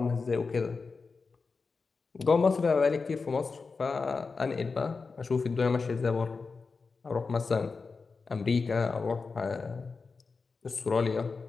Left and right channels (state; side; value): quieter; right; 4.5 dB